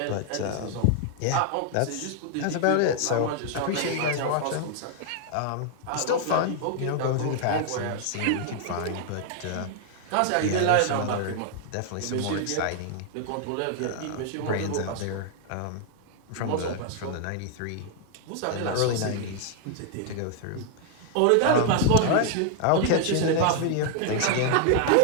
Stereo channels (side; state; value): both; different; correlation 0.00